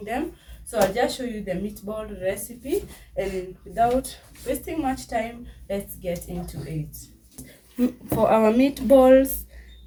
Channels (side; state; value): both; identical; correlation 1.00